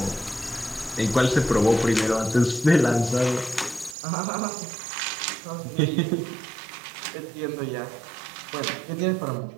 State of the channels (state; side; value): drops out; left; at 4.0 s